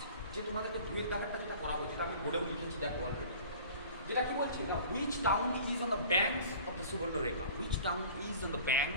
যে তোমাদেরকে দুয়ের দাগেরটা যেটা করাবো, যেটা আমি বোর্ডেও লিখেছি দেখো অলরেডি, যেটা কি বলছে না, which town is on the banks of the Subarnarekha, which town is on the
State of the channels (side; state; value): both; inverted; correlation -0.44